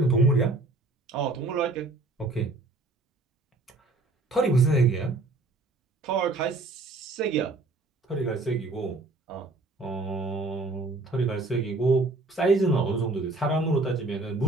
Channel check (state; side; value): quieter; left; 3.2 dB